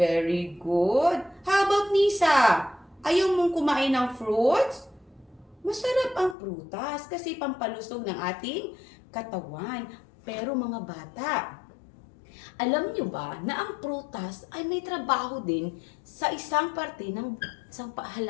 good. How about Nisa? Ayaw mong kumain ng fruits? Masarap ang prutas kasi pampalusog ng ating katawan. Pero mga bata, alam nyo ba na ang prutas ay may trabaho din sa isang parte ng isang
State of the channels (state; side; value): drops out; right; at 6.4 s